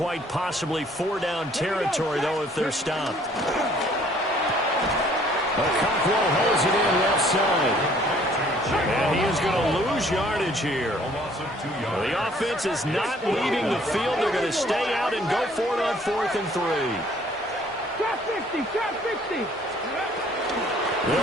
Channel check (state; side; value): normal; both; correlation 0.59